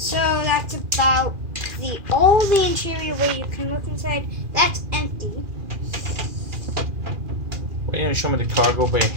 that's about all the interior where you can look inside. That's empty. Wait, you show me the cargo bay.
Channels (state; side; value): late; left; 2.4 ms